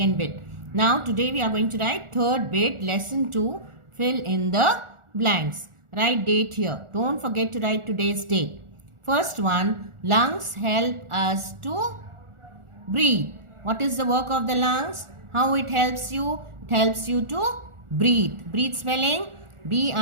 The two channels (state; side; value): late; left; 1.4 ms